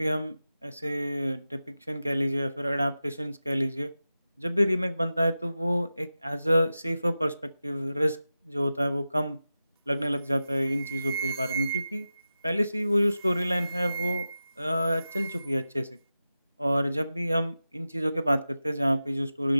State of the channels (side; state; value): both; inverted; correlation -0.93